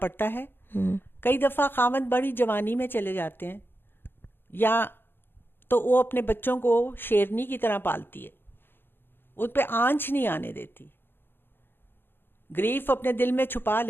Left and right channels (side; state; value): right; late; 0.10 ms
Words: ہے. کئی دفعہ خاوند بڑی جوانی میں چلے جاتے ہیں, یا تو وہ اپنے بچوں کو شیرنی کی طرح پالتی ہے, ان پہ آنچ نہیں آنے دیتی, گریف اپنے دل میں چھپا